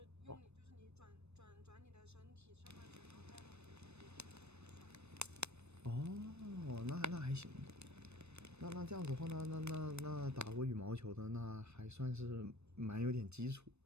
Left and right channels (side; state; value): left; late; 0.81 ms